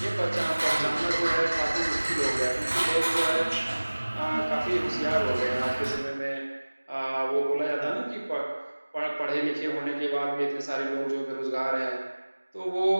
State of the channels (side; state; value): both; inverted; correlation -1.00